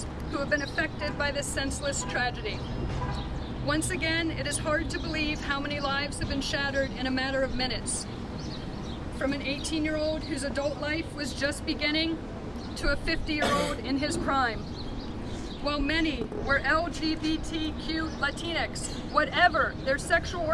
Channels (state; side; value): identical; both; correlation 1.00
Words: who have been affected by this senseless tragedy. Once again, it is hard to believe how many lives have been shattered in a matter of minutes. From an 18-year-old whose adult life was just beginning to a 50-year-old in his prime. While many were LGBTQ Latinx, whatever their sexual